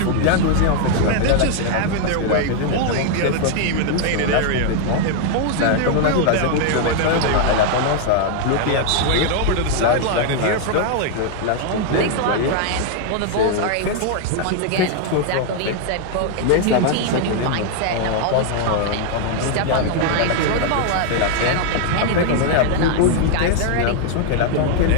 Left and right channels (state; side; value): different; both; correlation 0.00